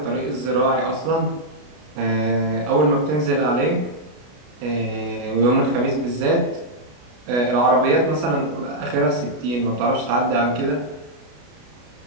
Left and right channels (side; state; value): left; late; 33 ms